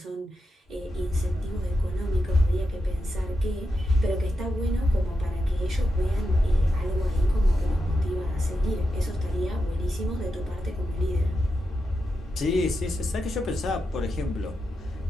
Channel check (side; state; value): both; normal; correlation 0.88